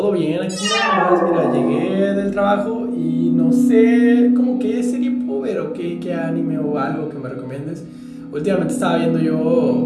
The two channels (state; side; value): identical; both; correlation 1.00